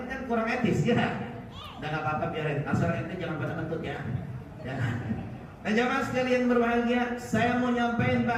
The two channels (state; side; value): identical; both; correlation 1.00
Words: kan kurang etis ya. Udah nggak apa-apa, biarin. Asal ente jangan pada kentut ya. Jangan. Nah jamaah sekalian berbahagia, saya mau nyampein